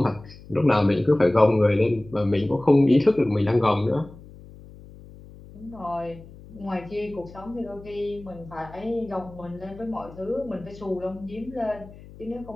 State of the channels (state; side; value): noise; left; hum, 19 dB below the sound